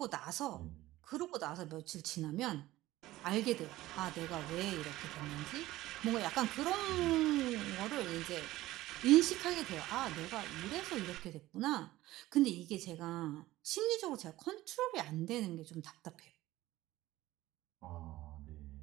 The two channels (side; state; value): left; quieter; 16.6 dB